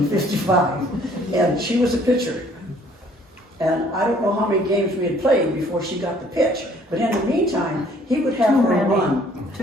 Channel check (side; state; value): both; normal; correlation 0.59